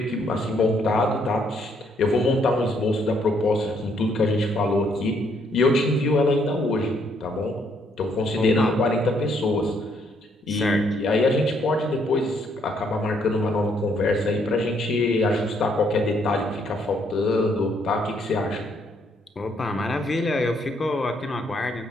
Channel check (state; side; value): normal; both; correlation 0.70